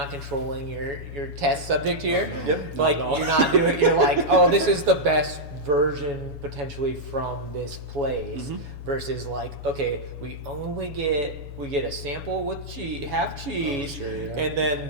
controlling your test subject here. Yep. Like Not at all. you're not doing. You're like, oh, this is the best version potentially from this place. Versus like, okay, we get a sample with half cheese, sure, yeah. and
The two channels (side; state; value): left; late; 7.1 ms